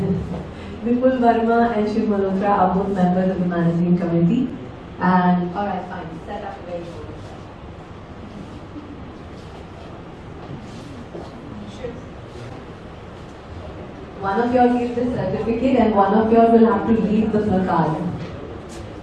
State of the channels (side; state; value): both; identical; correlation 1.00